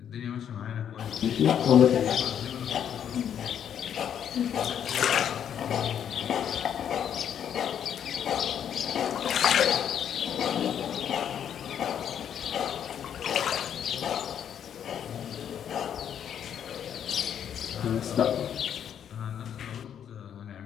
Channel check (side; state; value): right; quieter; 9.0 dB